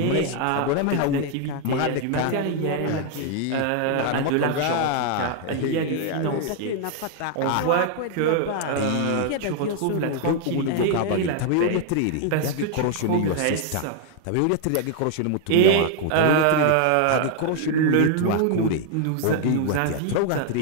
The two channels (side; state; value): both; different; correlation 0.00